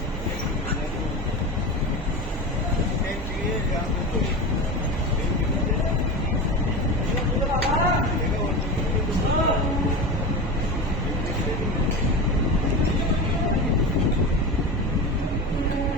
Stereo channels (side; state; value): both; normal; correlation 0.25